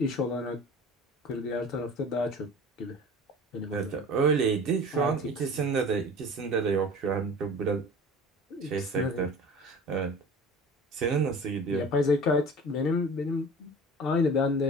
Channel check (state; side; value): normal; both; correlation 0.40